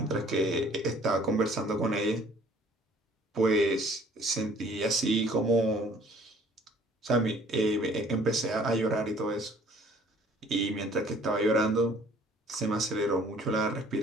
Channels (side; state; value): both; normal; correlation 0.55